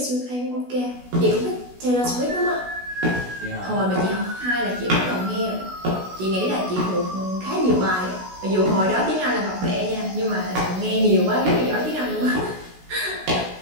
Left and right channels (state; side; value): late; left; 16 ms